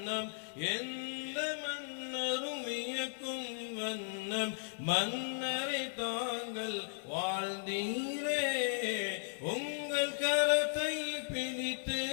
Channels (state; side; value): silent; right; digital silence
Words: எந்த மன்னரும் வியக்கும் வண்ணம் மன்னரை தாங்கள் வாழ்ந்தீரே உங்கள் கரத்தை பிடித்து